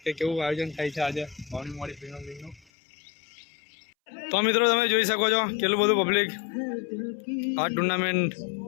કે કેવું આયોજન થાય છે આજે વાવણી મોવાડી પ્રીમિયમ લીગનું। તો મિત્રો તમે જોઈ શકો છો કેટલું બધું પબ્લિક આ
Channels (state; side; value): drops out; right; at 2.6 s